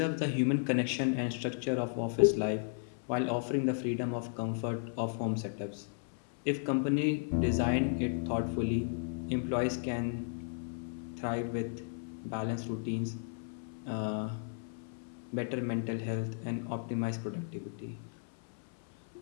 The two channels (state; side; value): silent; right; 55 dB below the other